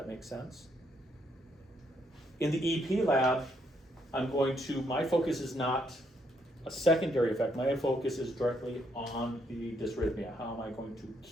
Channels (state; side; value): normal; both; correlation 0.73